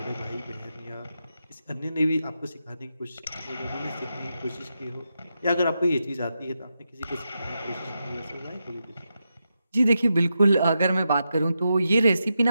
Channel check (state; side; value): inverted; both; correlation -0.87